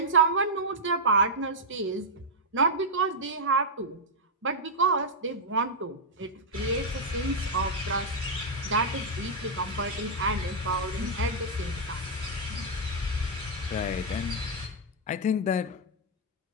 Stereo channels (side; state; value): both; normal; correlation -0.05